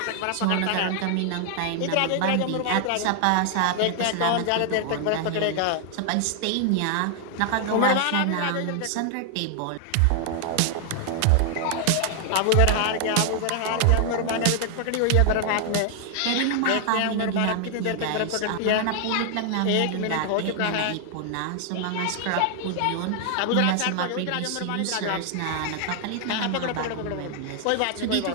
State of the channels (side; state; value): both; different; correlation 0.00